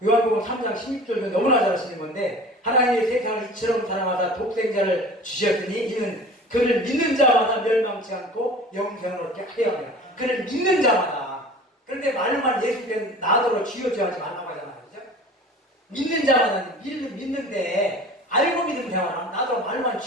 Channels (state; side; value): normal; both; correlation 0.41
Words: 요한복음 3장 16절도 너무나 잘하시는 건데 하나님의 세상을 이처럼 사랑하사 독생자를 주셨으니 이는 그를 믿는 자마다 멸망치 않고 영생을 얻게 하려 합니다. 그를 믿는 자마다. 그런데 말만 예수께서 나더러 쥐어줘하지 말라고 하잖아요. 그죠? 믿는 자마다 믿는데 알고 믿는 자마다 나더러 말만